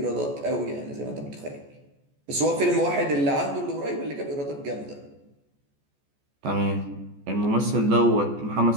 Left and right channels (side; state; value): left; late; 14 ms